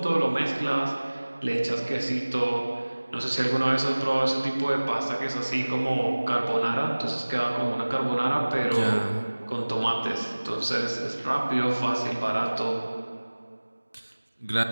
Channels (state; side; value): inverted; both; correlation -1.00